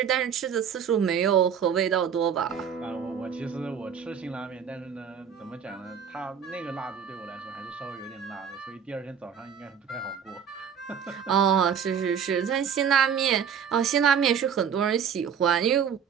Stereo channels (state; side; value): quieter; left; 7.6 dB